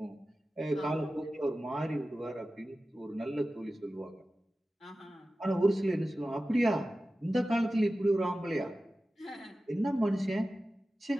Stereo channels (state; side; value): normal; both; correlation 0.95